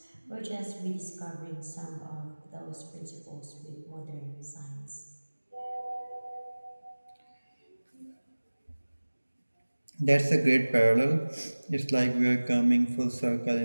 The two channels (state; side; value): inverted; both; correlation -1.00